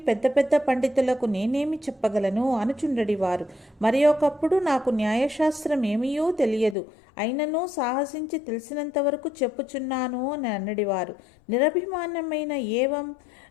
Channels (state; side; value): drops out; right; at 6.8 s